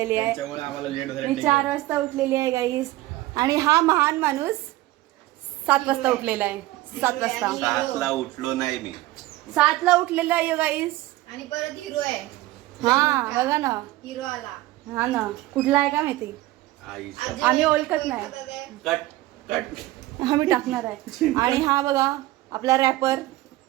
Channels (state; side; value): quieter; left; 17.2 dB